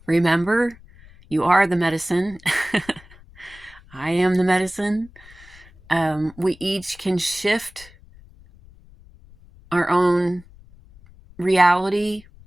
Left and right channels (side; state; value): left; noise; rumble, 24 dB below the sound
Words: remember, you are the medicine. I am the medicine. We each can shift our own reality